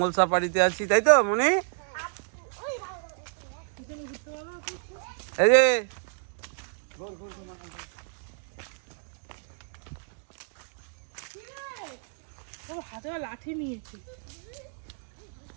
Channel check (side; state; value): left; silent; digital silence